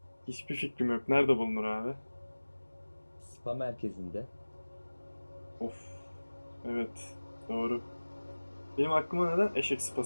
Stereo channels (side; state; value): both; inverted; correlation -1.00